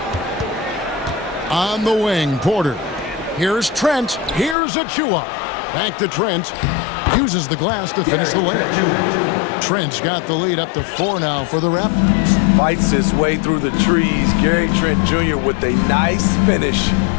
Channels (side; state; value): right; drops out; at 4.5 s